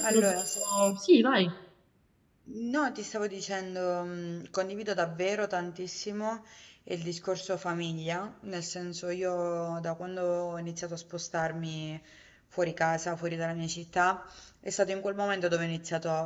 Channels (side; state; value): both; identical; correlation 1.00